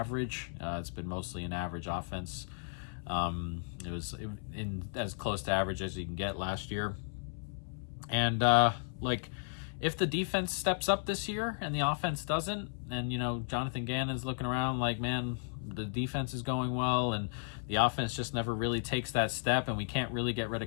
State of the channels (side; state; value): right; silent; 55 dB below the other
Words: It's been mostly an average offense. It was in as close to average as you can get last year. And if the defense steps up this year and the offense doesn't, and Jonathan Gannon's looking around like, man, the defense is going well and the offense just never really takes that step, and we can't really get rid